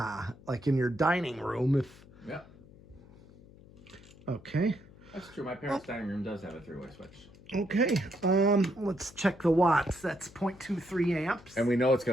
like in your dining room. Yeah. Okay. That's true. My parents' dining room does have a 3-way switch. Okay. Let's check the watts. That's 0.23 amps. And we know it's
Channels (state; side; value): noise; left; hum, 22 dB below the sound